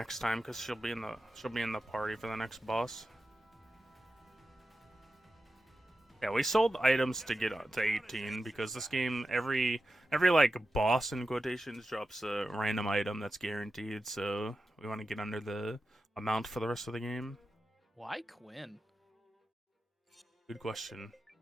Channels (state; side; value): normal; both; correlation 0.92